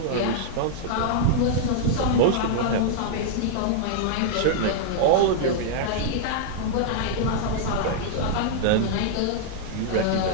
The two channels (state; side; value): different; both; correlation -0.01